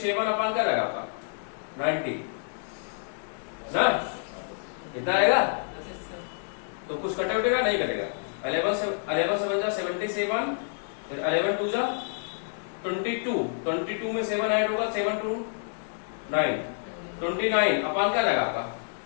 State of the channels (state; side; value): silent; right; digital silence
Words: क्या जाएगा आपका 90 ना, कितना आएगा। तो कुछ कटे उटेगा नहीं कटेगा, 11 से बन जा 77, फिर 11 2 जा 22, 22 में 7 ऐड होगा 7 2 9, 29/, क्या जाएगा आपका